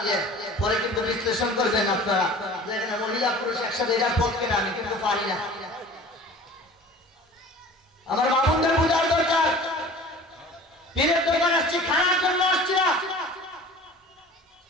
পরে কিন্তু বিশ্লেষণ করবেন আপনারা, যেখানে মহিলা পুরুষ একসাথে, এটার পক্ষে না, আমি কিন্তু পারি না। আমার বাবুদের বোঝার দরকার, পীরের দরকার আসছি, খানার জন্য আসছি না।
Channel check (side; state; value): both; normal; correlation 0.43